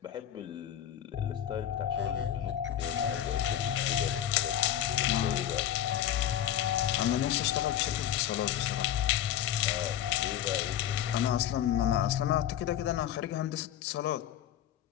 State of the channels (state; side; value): quieter; right; 11.0 dB